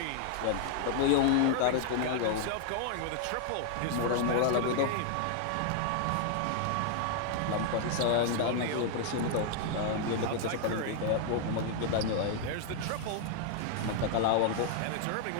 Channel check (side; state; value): both; different; correlation 0.00